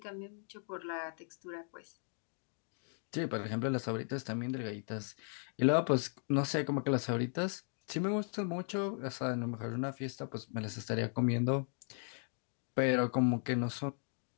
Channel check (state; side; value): silent; right; 53 dB below the other